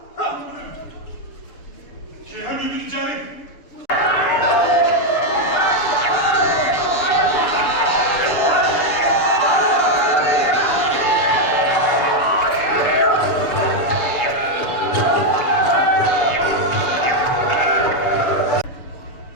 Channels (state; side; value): late; right; 6.9 ms